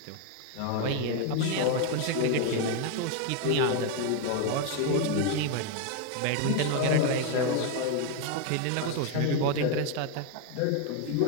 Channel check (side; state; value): both; different; correlation 0.01